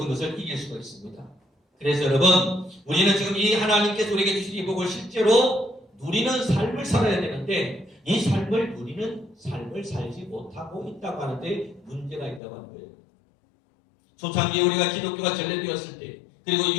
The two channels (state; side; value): drops out; right; at 12.4 s